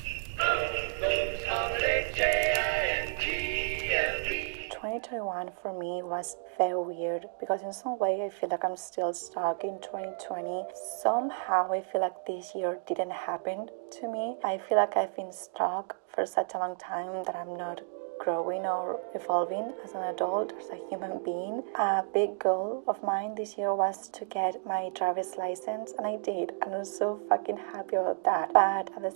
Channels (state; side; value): silent; left; digital silence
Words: for me was very weird because in some way I feel like I'm still stuck in 2020. Somehow I feel like this year didn't happen to me. I feel like I've been stuck for such a long time that I'm not growing or evolving as an adult, as a human being. A big goal of mine this year was to get my driver's license, and I did, and I'm so fucking happy about that. But at the